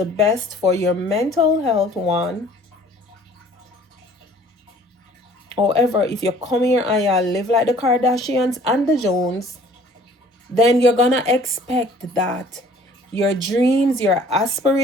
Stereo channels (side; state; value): both; normal; correlation 0.53